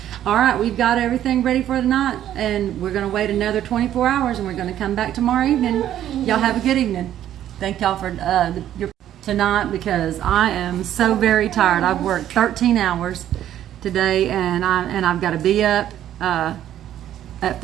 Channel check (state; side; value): quieter; left; 11.5 dB